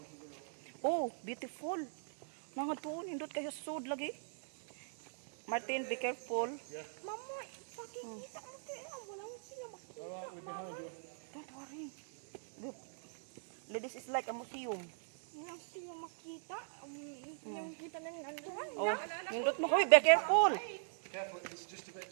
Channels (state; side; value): silent; left; digital silence